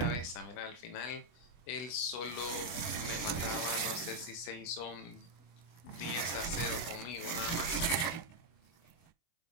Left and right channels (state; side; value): late; right; 24 ms